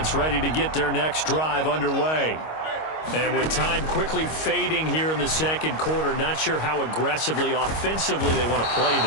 ready to get their next drive underway. And with time quickly fading here in the second quarter, not sure how aggressively, offensively they want to play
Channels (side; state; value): right; late; 25 ms